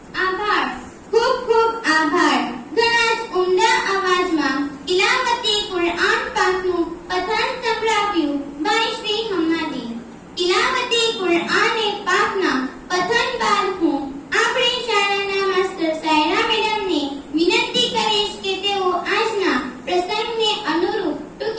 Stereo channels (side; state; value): both; identical; correlation 1.00